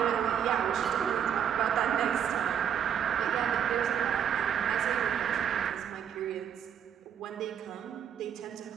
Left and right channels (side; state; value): left; quieter; 8.8 dB